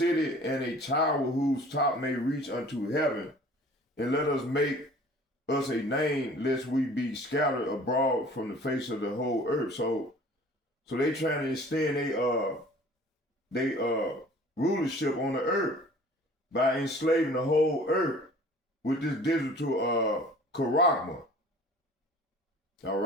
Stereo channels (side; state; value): both; normal; correlation 0.48